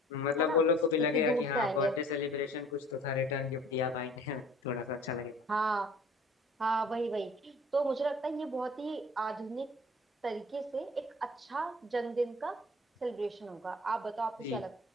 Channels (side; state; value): both; normal; correlation 0.50